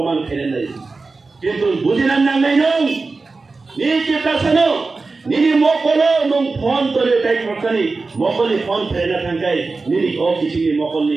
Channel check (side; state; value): left; quieter; 3.9 dB